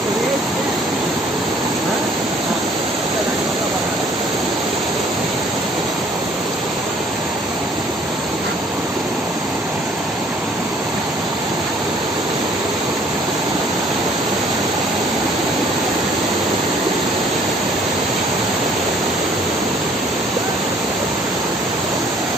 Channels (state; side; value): normal; both; correlation 0.58